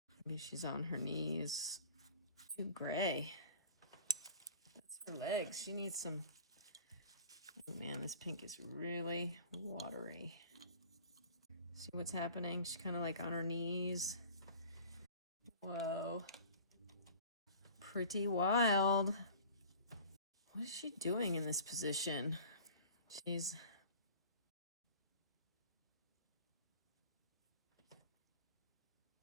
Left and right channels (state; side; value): inverted; both; correlation -0.43